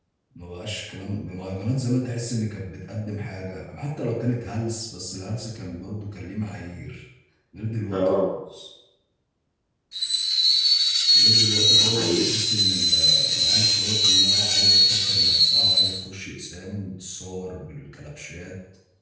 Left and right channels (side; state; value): both; identical; correlation 1.00